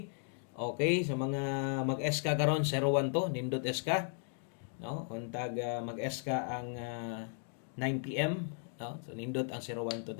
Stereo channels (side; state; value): right; silent; 54 dB below the other